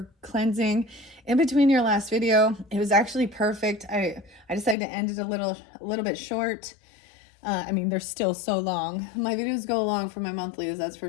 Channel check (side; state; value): right; drops out; at 4.8 s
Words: cleansing in between your last video. It was actually perfect. I decided to end it a little bit short. I mean, they're still so long. My videos go long for my monthlies, that's for